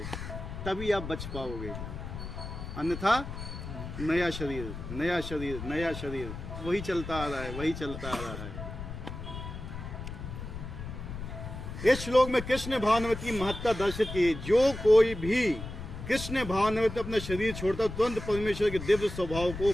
तभी आप बच पाओगे। अन्यथा नया शरीर नया शरीर नया शरीर, वही चलता आ रहा है, वही चलता आ रहा है। इस श्लोक में कृष्ण भावनामृत की महत्ता दर्शित की। जो कोई भी कृष्ण भावनामृत अपना शरीर छोड़ता है, तुरंत परमेश्वर के दिव्य स्वभाव को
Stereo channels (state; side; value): noise; left; rumble, 9 dB below the sound